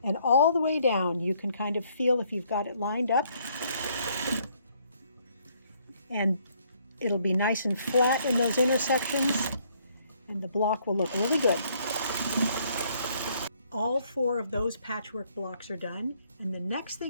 And all the way down, you can kind of feel if you've got it lined up. And it'll be nice and flat in those intersections, and the block will look really good. All 4 of those patchwork blocks are done, and the next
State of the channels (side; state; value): both; inverted; correlation -0.66